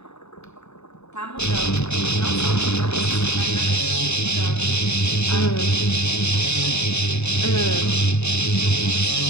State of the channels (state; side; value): late; right; 0.80 ms